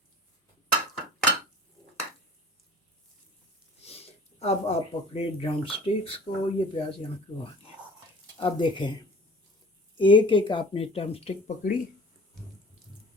अब आप पकड़े ड्रम स्टिक्स को, ये प्याज यहाँ क्यों आ गया। अब देखें, एक एक आपने ड्रम स्टिक पकड़ी,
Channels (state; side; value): normal; both; correlation 0.44